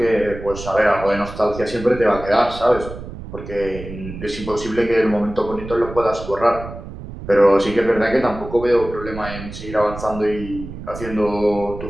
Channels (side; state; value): right; noise; rumble, 12 dB below the sound